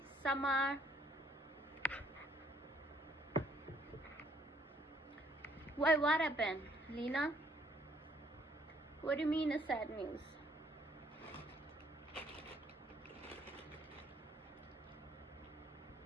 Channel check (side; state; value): both; normal; correlation 0.65